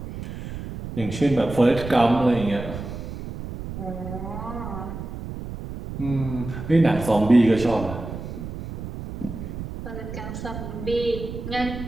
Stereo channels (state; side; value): noise; right; rumble, 9 dB below the sound